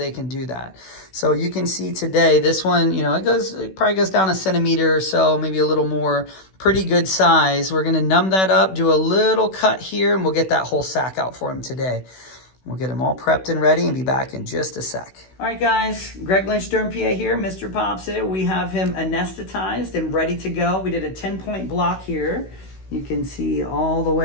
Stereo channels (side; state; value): right; late; 16 ms